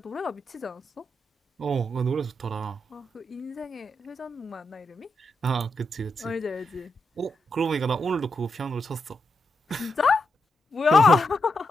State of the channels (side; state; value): both; normal; correlation 0.84